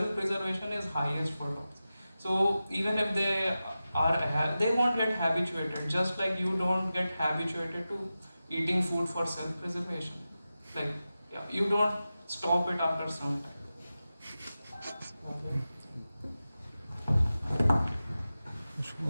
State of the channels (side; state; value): both; inverted; correlation -0.94